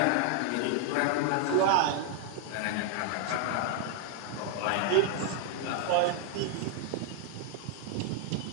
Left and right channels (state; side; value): different; both; correlation 0.00